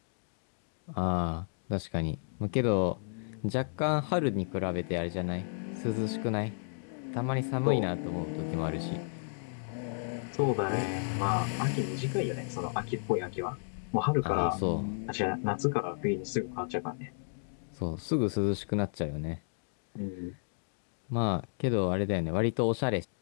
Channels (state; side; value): silent; right; digital silence